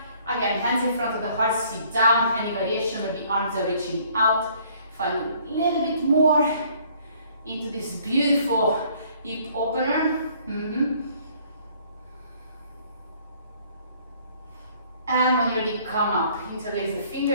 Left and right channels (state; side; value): inverted; both; correlation -0.59